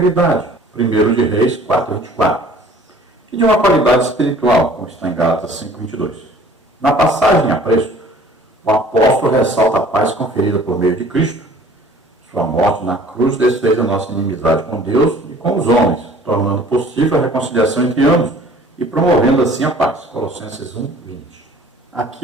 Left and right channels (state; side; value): normal; both; correlation 0.51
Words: 1 de Reis 4, 24. E de uma qualidade espiritual, como está em Gálatas 5, 22. Na passagem a preço, o apóstolo ressalta a paz conferida por meio de Cristo. Sua morte na cruz desfez a nossa inimizade com Deus e com os homens, tornando possível a reconciliação entre ambos e promovendo assim a paz. Colossenses 1, 20.